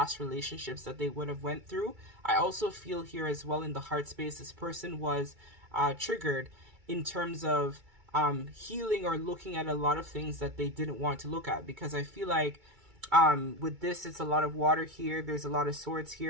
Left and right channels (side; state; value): left; late; 2.3 ms